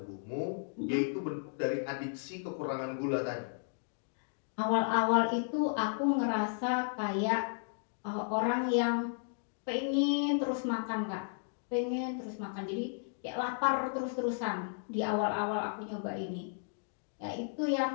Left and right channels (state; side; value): silent; right; digital silence